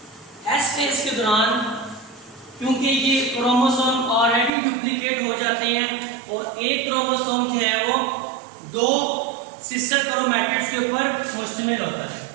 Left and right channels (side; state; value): left; drops out; at 4.5 s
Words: एस फेज के दौरान क्योंकि ये क्रोमोसोम ऑलरेडी डुप्लीकेट हो जाते हैं और एक क्रोमोसोम जो है वो दो सिस्टर क्रोमैटिड्स के ऊपर मुश्तमिल होता है।